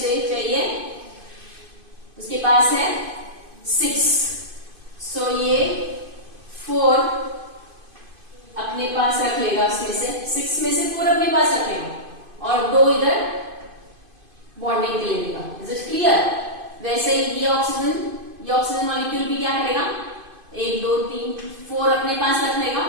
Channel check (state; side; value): late; left; 2.5 ms